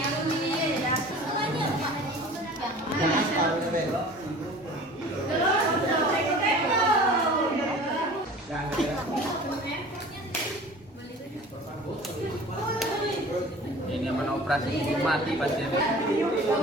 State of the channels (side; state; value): both; normal; correlation 0.43